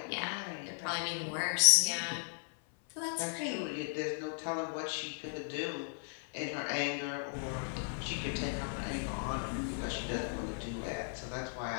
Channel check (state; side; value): silent; right; 54 dB below the other